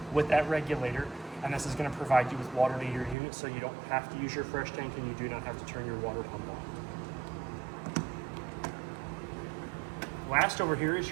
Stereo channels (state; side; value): drops out; left; at 3.2 s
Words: with that regulator, and this is gonna provide you with water to your unit, so you don't have to use your fresh tank and you do not have to turn your water pump on. Last over here is